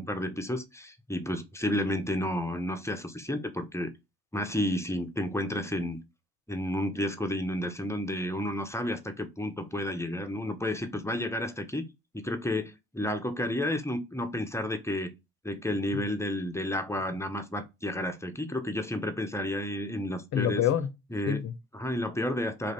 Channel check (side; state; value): both; normal; correlation 0.59